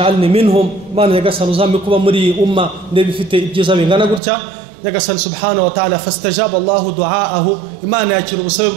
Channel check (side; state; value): left; drops out; at 4.2 s